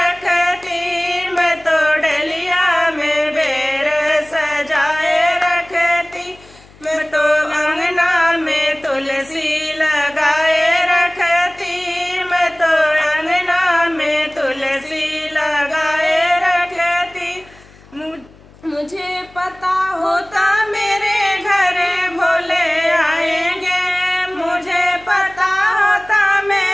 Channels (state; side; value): noise; left; hum, 25 dB below the sound